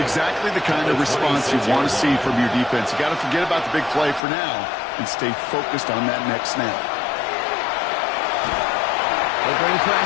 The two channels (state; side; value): drops out; right; at 4.2 s